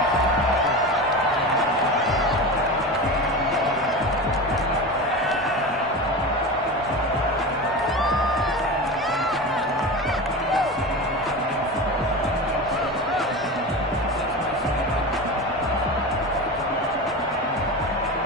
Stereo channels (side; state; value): both; normal; correlation 0.26